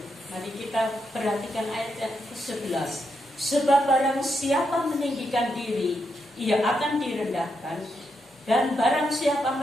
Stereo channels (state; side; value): normal; both; correlation 0.82